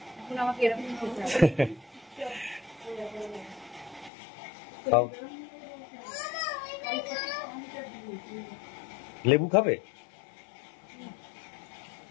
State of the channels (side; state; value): right; drops out; at 4.1 s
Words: আমাকে এরকম খেতে হবে। খাও। লেবু খাবে?